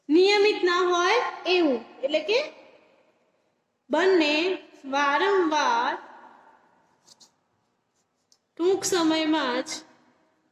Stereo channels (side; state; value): both; identical; correlation 1.00